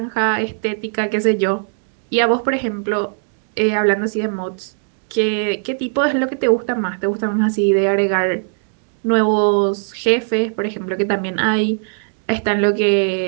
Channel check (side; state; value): left; silent; 59 dB below the other